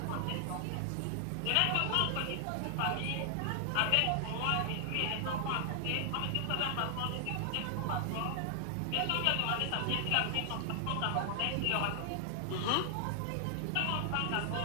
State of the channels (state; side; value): different; both; correlation 0.00